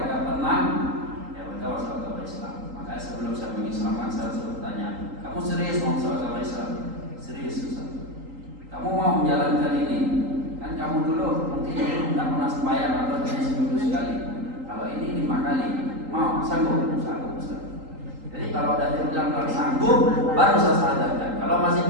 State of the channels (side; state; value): left; late; 3.8 ms